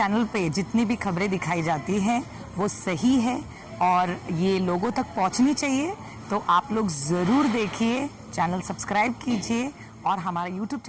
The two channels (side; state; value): both; identical; correlation 1.00